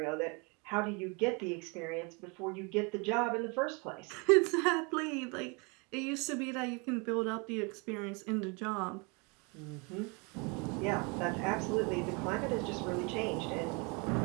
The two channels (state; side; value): quieter; left; 31.0 dB